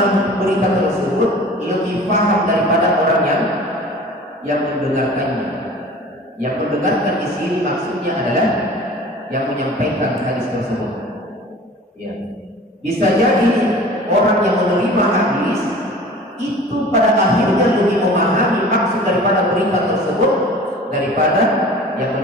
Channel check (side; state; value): both; normal; correlation 0.43